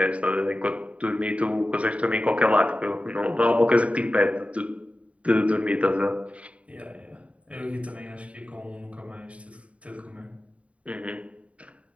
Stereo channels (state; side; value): late; left; 0.065 ms